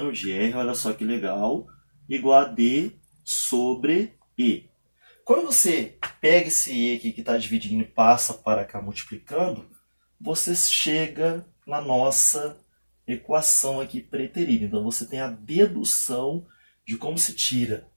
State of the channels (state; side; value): inverted; both; correlation -1.00